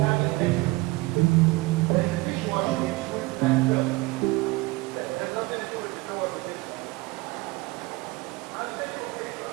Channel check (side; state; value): left; quieter; 21.9 dB